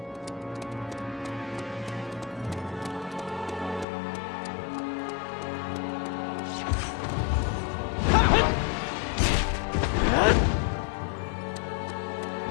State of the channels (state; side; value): drops out; right; at 3.9 s